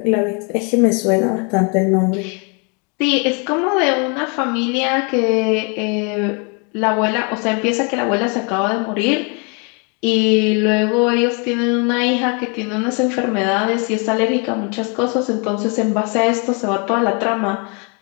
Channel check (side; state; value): right; quieter; 34.9 dB